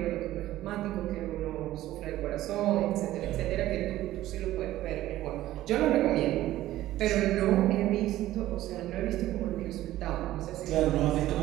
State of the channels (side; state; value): left; quieter; 14.8 dB